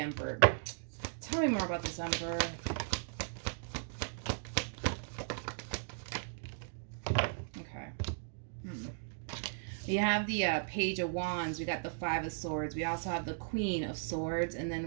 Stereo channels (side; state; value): left; silent; digital silence